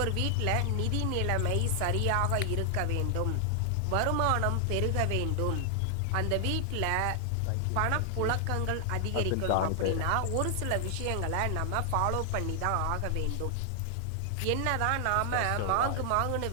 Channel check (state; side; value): different; both; correlation 0.00